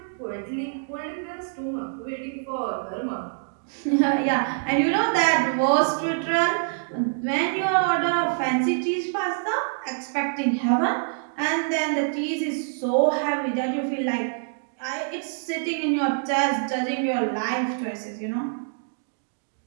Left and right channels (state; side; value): silent; left; digital silence